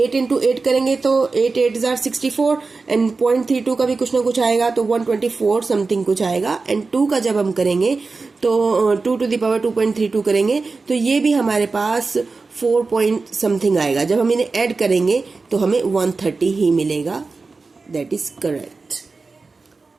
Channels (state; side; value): quieter; left; 4.1 dB